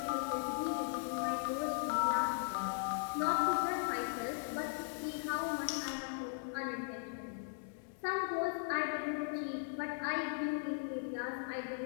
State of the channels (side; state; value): right; silent; digital silence